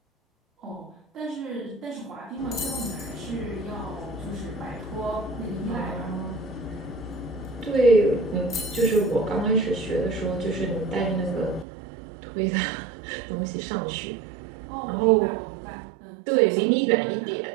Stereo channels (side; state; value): left; drops out; at 11.7 s